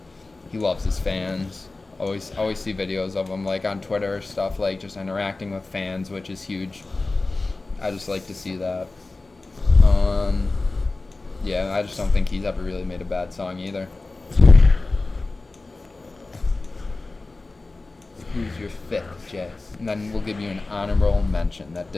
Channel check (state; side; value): quieter; right; 3.4 dB